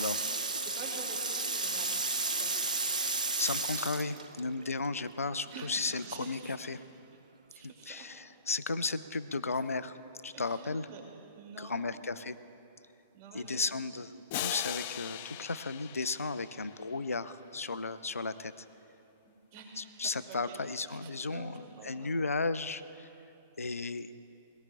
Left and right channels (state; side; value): inverted; both; correlation -0.48